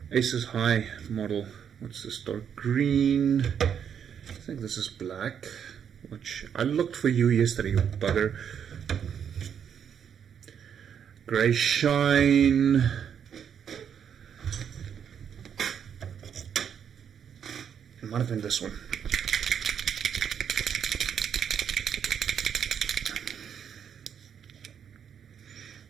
Aces High model. What's this? Dark green. I think this is black. Which I looked for you yesterday, you bugger. Grey shine. It might have been this one.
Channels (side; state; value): left; quieter; 8.1 dB